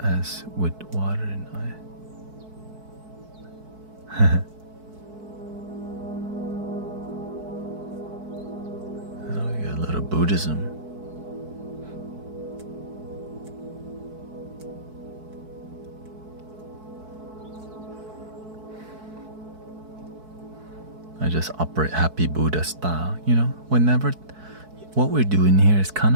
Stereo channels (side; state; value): left; late; 4.6 ms